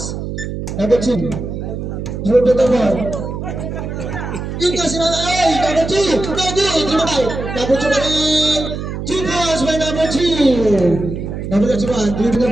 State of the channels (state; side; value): noise; right; hum, 6 dB below the sound